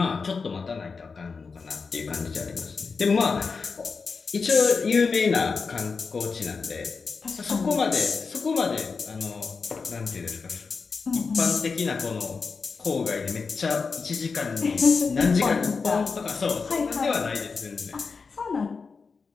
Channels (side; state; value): right; quieter; 4.9 dB